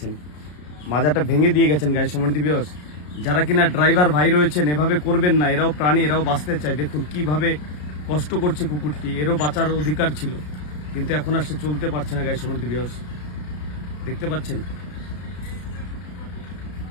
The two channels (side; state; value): right; late; 33 ms